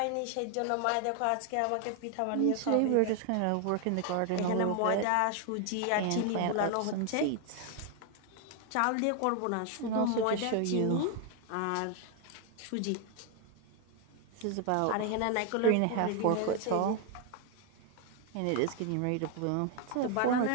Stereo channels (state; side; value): different; both; correlation 0.00